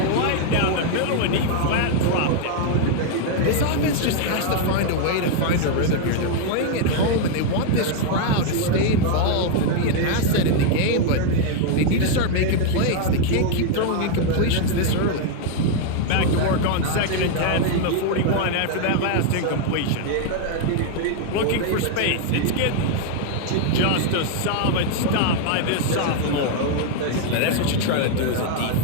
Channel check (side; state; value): both; different; correlation 0.00